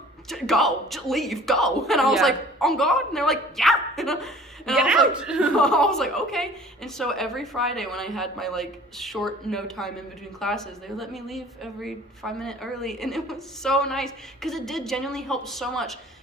Go, just leave, go. And I was like, on God? And they're like, yeah. And I was like, okay. And so every Friday when I had my like short no time in between classes, they would let me leave every 5 minutes early. And it was so nice because it did genuinely help so much.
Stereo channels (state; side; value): normal; both; correlation 0.49